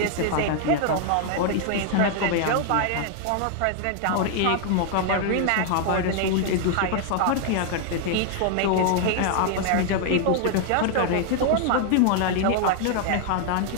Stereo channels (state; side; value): different; both; correlation 0.00